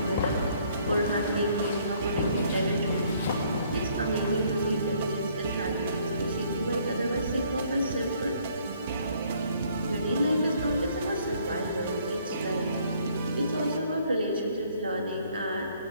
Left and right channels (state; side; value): inverted; both; correlation -0.63